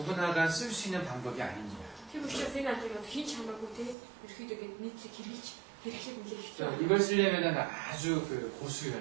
쓸 수 있는 방법이 아닙니다. Тэр учраас энэ аргыг одоо хийж хамаагүй тий ерөөхдөө ингэ нийтлэг хэрэглэж хэрэглэх нэлээд хэцүү. 이걸 쓰려면 아주 그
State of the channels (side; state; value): left; drops out; at 4.0 s